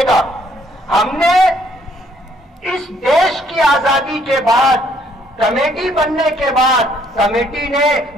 हमने इस देश की आजादी के बाद, कमेटी बनने के बाद, कमेटी ने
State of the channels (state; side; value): normal; both; correlation 0.66